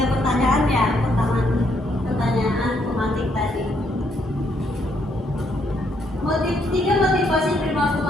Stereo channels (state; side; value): normal; both; correlation 0.73